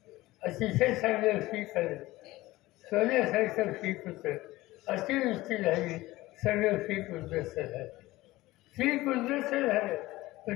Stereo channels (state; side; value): quieter; right; 18.3 dB